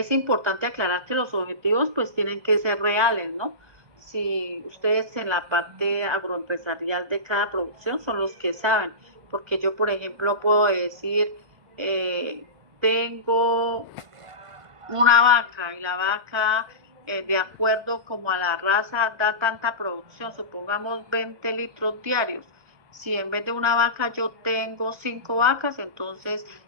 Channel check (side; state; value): left; late; 1.4 ms